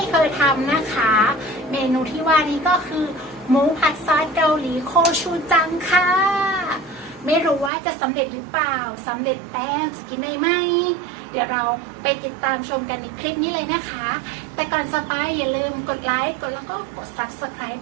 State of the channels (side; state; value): left; drops out; at 7.7 s